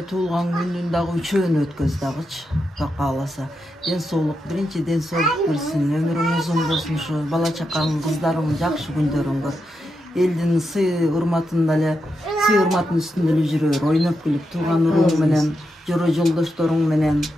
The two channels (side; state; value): both; normal; correlation 0.86